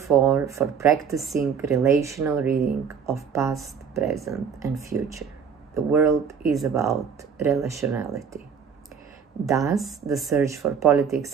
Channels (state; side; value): quieter; left; 6.8 dB